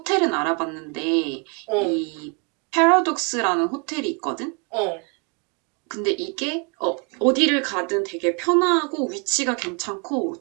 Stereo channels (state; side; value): quieter; left; 34.0 dB